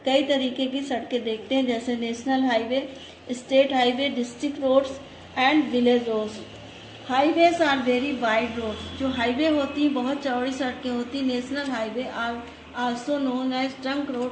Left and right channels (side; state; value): both; identical; correlation 1.00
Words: कई तरीके की सड़कें देखते हैं जैसे national highway, state highway, district roads and village roads. Highways are very wide roads. जो हाईवे होती हैं बहुत चौड़ी सड़कें होती. National highway are also known as trunk